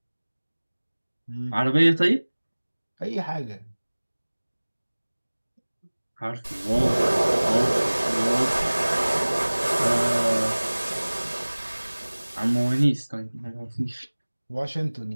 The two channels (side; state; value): both; inverted; correlation -1.00